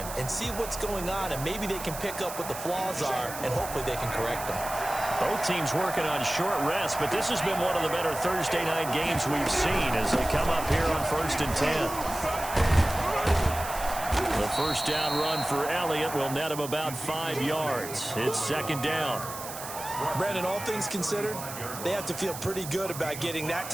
and see what's going on, and maybe they can pick up what the flaws are, and hopefully they can correct them. Both teams working on short rest, but this has been one of the better Thursday night games we've seen as they come up here on 1st and 10. The 1st down run for Elliott will net him about 5 yards. It's 2nd down. Brandon, all things considered, they have to feel pretty good about getting that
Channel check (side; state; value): right; noise; hiss, 10 dB below the sound